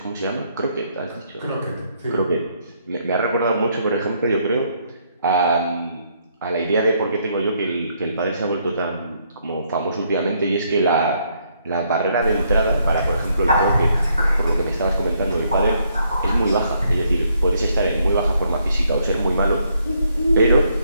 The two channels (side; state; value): both; inverted; correlation -0.72